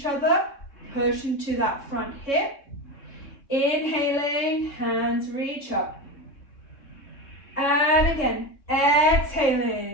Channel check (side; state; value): right; late; 3.6 ms